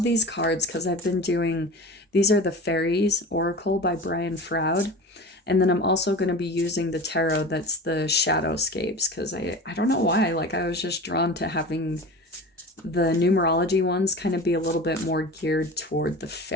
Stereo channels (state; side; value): normal; both; correlation 0.33